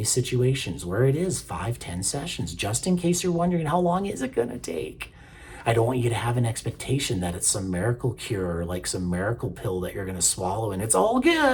situations where it is 5-10 sessions, just in case you're wondering, how long is it gonna take? I don't want you to have an expectation that it's some miracle cure or like some miracle pill that you're gonna swallow and it's all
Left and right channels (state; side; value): identical; both; correlation 1.00